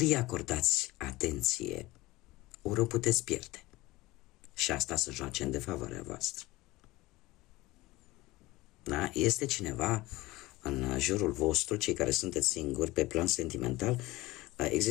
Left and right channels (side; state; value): right; quieter; 19.8 dB